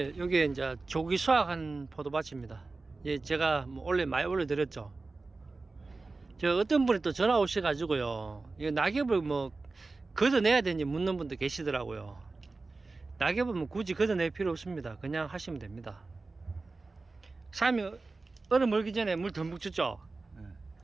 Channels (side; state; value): left; quieter; 3.6 dB